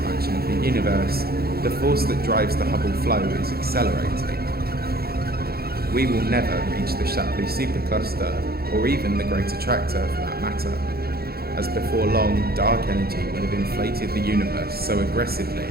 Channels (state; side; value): late; left; 0.45 ms